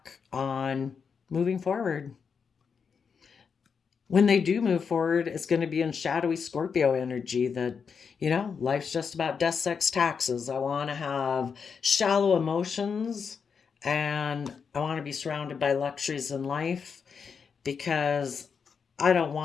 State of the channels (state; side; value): quieter; right; 6.1 dB